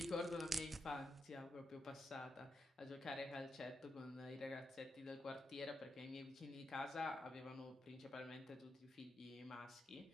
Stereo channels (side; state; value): both; normal; correlation 0.85